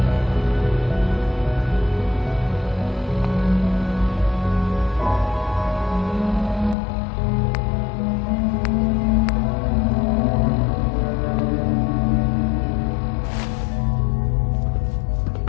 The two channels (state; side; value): drops out; right; at 6.8 s